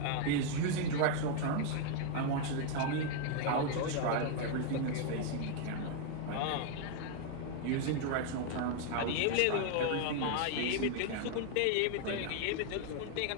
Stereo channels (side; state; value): both; different; correlation 0.00